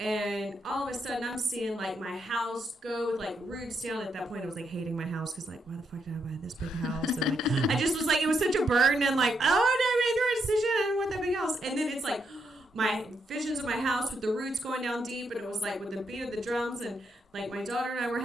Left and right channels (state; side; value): normal; both; correlation 0.79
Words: all of a sudden, I'm seeing like my house go with like roots down. At that point, I was like hating my house because like, why the fuck did I buy this big house? And like, I just was like, it was such a burden. And like, oh, no, I made the right decision. I didn't want that big house. And then it's like my visions of my house with the roots going down deep, and it was like with the beat of the drums, and like my daughter and I were